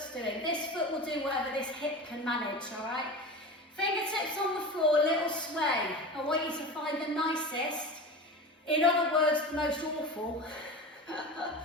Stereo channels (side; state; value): both; normal; correlation 0.29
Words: doing. This foot will do whatever this hip can manage, all right? Fingertips on the floor, a little sway. I want you to find the nicest, in other words, the most awful